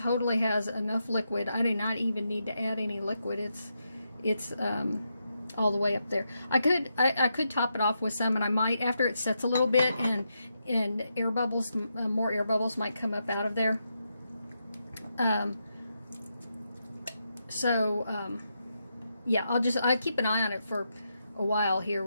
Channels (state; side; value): inverted; both; correlation -0.84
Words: has enough liquid. I do not even need to add any liquid. It's all the way up there. I could top it off with some, and I might after it sets a little bit, and air bubbles, more air bubbles might come up out of there. Yeah, I keep an eye on it for a while here